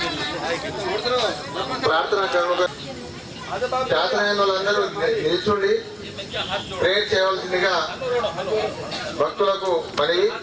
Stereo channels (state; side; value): identical; both; correlation 1.00